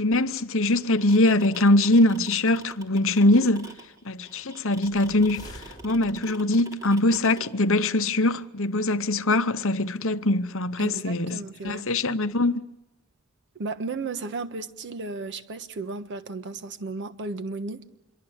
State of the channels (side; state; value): both; normal; correlation 0.37